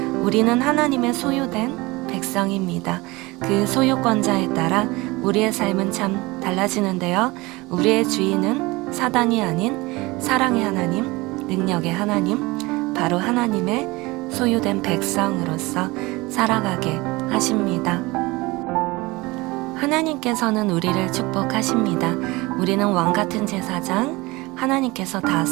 우리는 하나님의 소유된 백성입니다. 그 소유권자에 따라 우리의 삶은 참 달라지는데요. 우리의 주인은 사단이 아닌 사랑의 하나님, 능력의 하나님, 바로 하나님의 소유된 백성으로서 살아가게 하십니다. 하나님께서는 우리를 축복하십니다. 우리는 왕같은 제사장, 하나님께서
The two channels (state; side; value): quieter; left; 22.5 dB